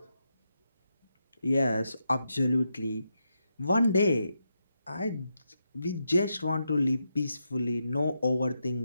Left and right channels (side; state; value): both; inverted; correlation -0.85